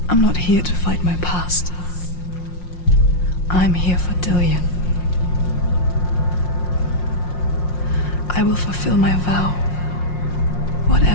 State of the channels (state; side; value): late; right; 5.6 ms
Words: I'm not here to fight my past. I'm here for Dillian. I will fulfill my vow,